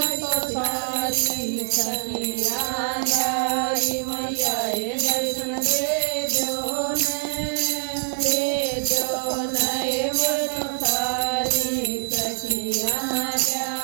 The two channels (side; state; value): left; silent; 63 dB below the other